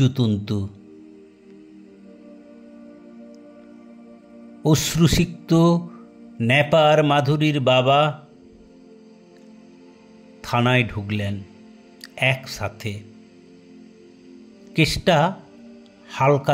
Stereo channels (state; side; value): identical; both; correlation 1.00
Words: অশ্রুসিক্ত নেপার মাধুরীর বাবা থানায় ঢুকলেন একসাথে, কেসটা